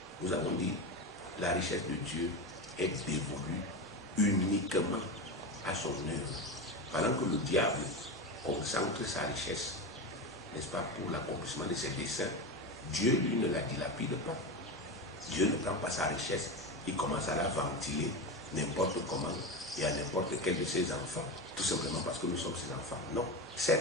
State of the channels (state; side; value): normal; both; correlation 0.20